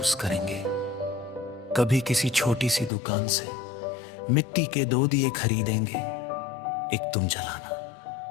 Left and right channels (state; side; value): drops out; right; at 2.9 s